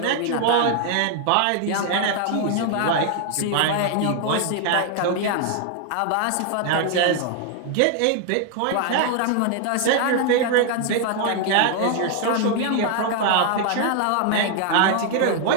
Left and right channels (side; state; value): both; different; correlation 0.00